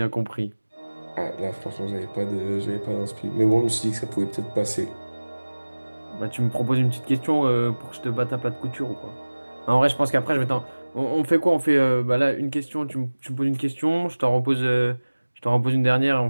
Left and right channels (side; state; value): both; inverted; correlation -1.00